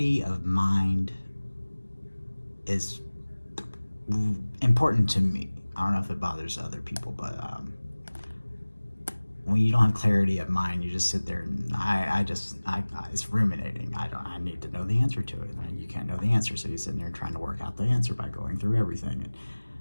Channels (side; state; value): both; inverted; correlation -1.00